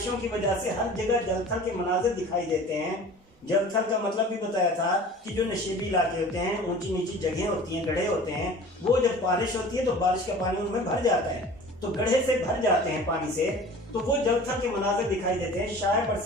کی وجہ سے ہر جگہ جل تھل کے مناظر دکھائی دیتے ہیں۔ جل تھل کا مطلب بھی بتایا تھا کہ جو نشیبی علاقے ہوتے ہیں، اونچی نیچی جگہیں ہوتی ہیں، گڑھے ہوتے ہیں، وہ جب بارش ہوتی ہے تو بارش کا پانی ان میں بھر جاتا ہے، تو گڑھے سے بھر جاتے ہیں پانی سے، تو وہ جل تھل کے مناظر دکھائی دیتے ہیں۔ شاعر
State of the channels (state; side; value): normal; both; correlation 0.43